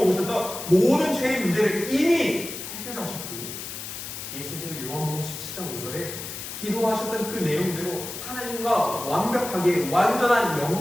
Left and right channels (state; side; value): noise; left; hiss, 8 dB below the sound